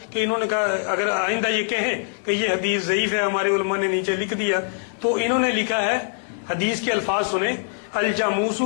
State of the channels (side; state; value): right; silent; digital silence